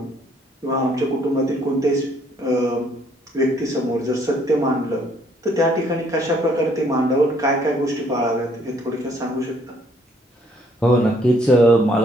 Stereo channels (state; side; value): normal; both; correlation 0.65